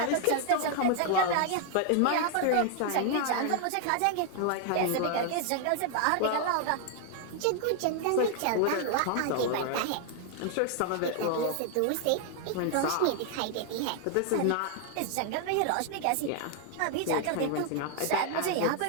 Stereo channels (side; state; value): both; different; correlation 0.00